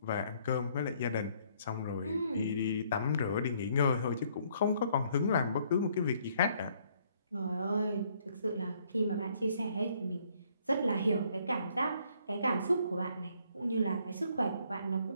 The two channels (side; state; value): both; inverted; correlation -0.66